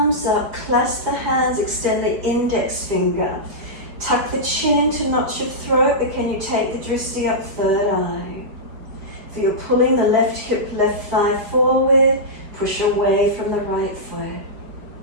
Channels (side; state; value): left; late; 5.1 ms